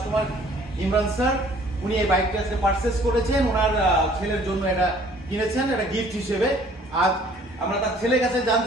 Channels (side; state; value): both; normal; correlation 0.56